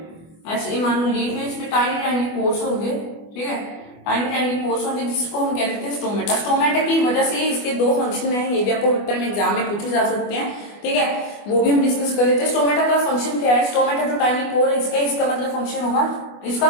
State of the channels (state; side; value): late; right; 24 ms